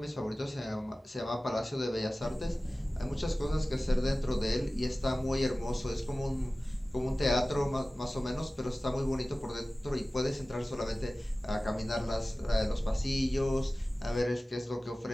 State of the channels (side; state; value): both; normal; correlation 0.97